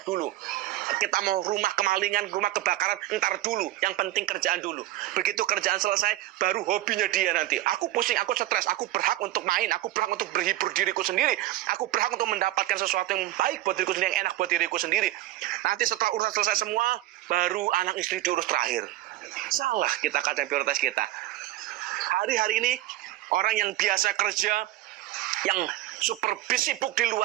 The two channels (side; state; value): left; quieter; 15.6 dB